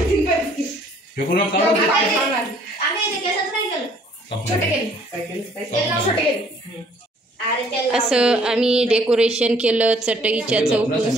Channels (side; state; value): both; normal; correlation 0.60